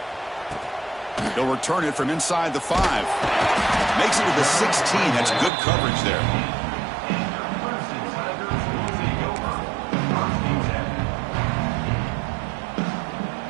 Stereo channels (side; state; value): left; drops out; at 5.5 s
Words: They'll return it from inside the 5. Makes it to the 16. That's good coverage there.